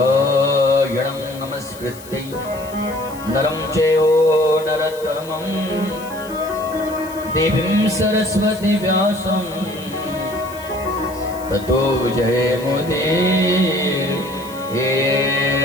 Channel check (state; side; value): noise; left; hiss, 19 dB below the sound